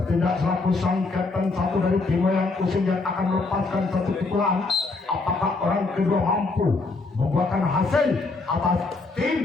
selaku sang Kapten 1 dari tim Wayang Useng yang akan melepaskan satu pukulan. Apakah orang kedua mampu membuahkan hasil atas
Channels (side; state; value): right; quieter; 3.6 dB